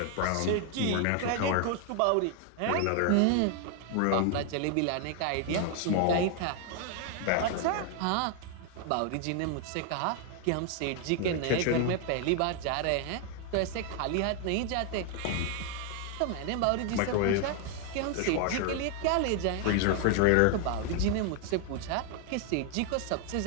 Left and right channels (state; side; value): different; both; correlation 0.01